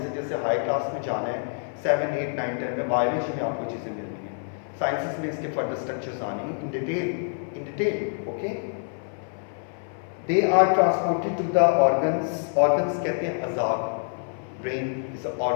जैसे हाई क्लास में जाना है 7, 8, 9, 10 में, बायोलॉजी में आपको चीज़ें मिलनी हैं, साइंसेस में इसके फर्दर स्ट्रक्चर्स आने हैं in detail, okay. They are transported to the organs, organs कहते हैं अज़ाब, brain is a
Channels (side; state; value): right; silent; 58 dB below the other